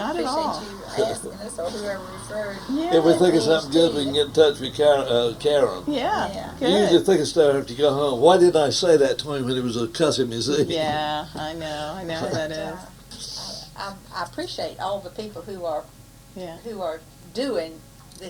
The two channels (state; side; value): identical; both; correlation 1.00